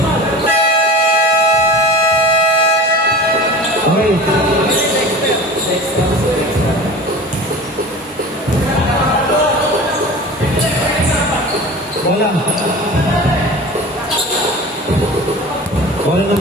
Okay. Wala. Wala nang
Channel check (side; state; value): both; normal; correlation 0.36